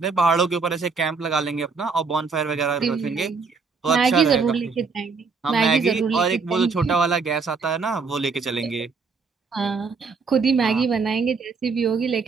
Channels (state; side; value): quieter; left; 4.8 dB